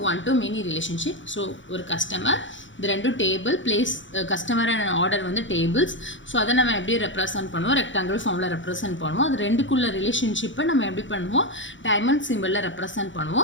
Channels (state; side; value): late; right; 0.55 ms